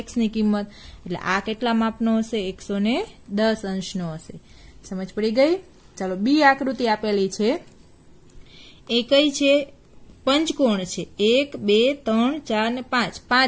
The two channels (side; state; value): both; identical; correlation 1.00